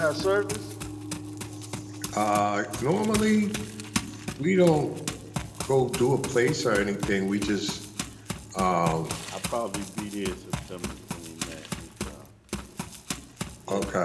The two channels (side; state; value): both; identical; correlation 1.00